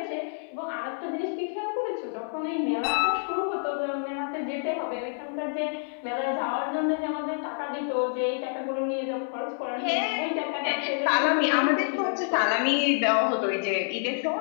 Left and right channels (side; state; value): right; silent; 59 dB below the other